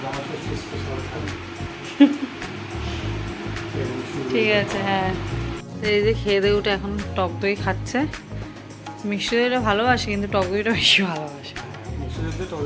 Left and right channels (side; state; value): both; identical; correlation 1.00